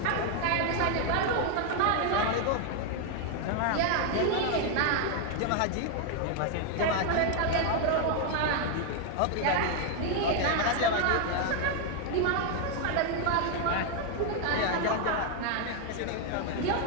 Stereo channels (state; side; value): different; both; correlation 0.00